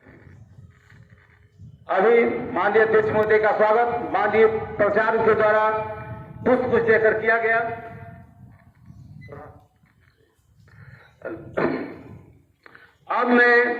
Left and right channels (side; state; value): both; identical; correlation 1.00